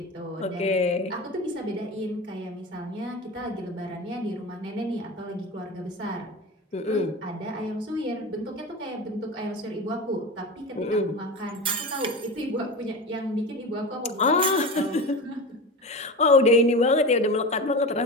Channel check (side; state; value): both; normal; correlation 0.27